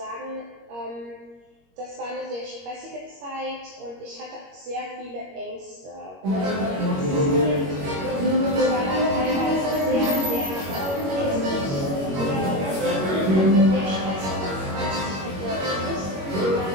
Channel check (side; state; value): left; late; 21 ms